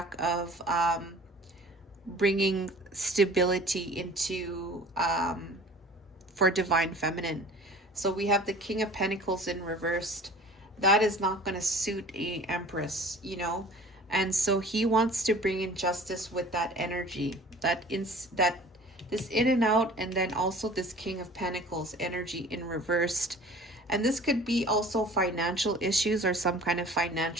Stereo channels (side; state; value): both; normal; correlation 0.46